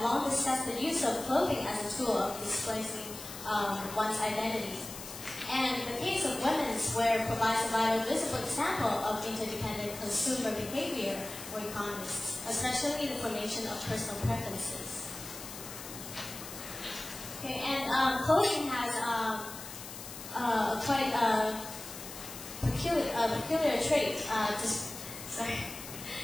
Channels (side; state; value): left; noise; hiss, 11 dB below the sound